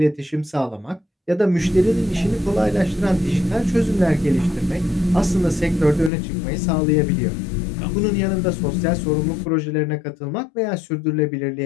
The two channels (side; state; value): right; drops out; at 6.1 s